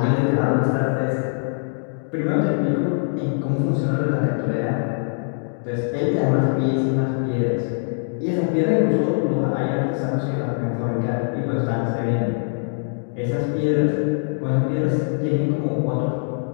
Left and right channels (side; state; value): right; silent; digital silence